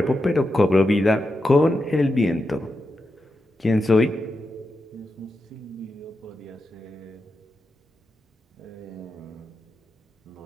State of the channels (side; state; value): both; normal; correlation 0.88